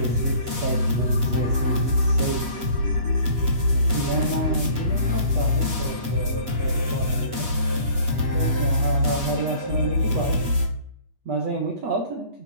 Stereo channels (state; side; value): late; left; 8.2 ms